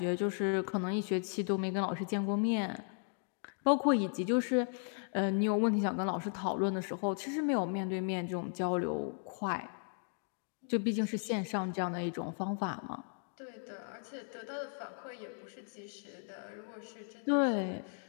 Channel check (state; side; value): silent; right; 54 dB below the other